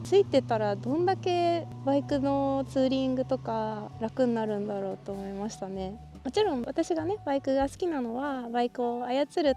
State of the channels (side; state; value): both; identical; correlation 1.00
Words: ついてたらどんだけバイクのツーリングとか楽になるんだろうと思いましたね。もちろん私がねバイクが好きなのはバイクを操る